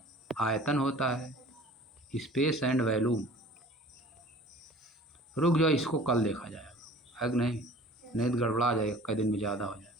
आयतन होता है। स्पेस एंड वॉल्यूम, रुक जाओ, इसको कल देखा जाएगा, है कि नहीं, तो गड़बड़ा जाएगा, कई दिन में ज़्यादा हो जाएगा।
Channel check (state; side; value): normal; both; correlation 0.46